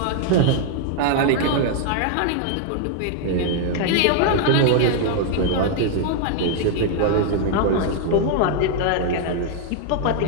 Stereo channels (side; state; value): both; different; correlation 0.00